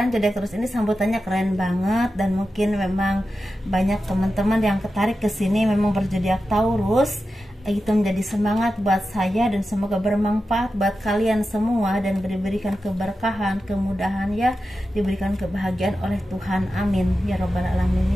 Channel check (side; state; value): both; normal; correlation 0.91